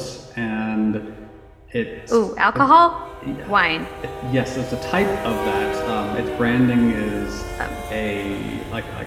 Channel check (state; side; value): identical; both; correlation 1.00